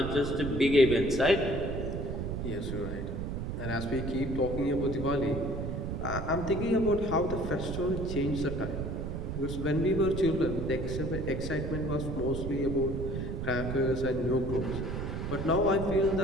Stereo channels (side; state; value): right; noise; rumble, 4 dB below the sound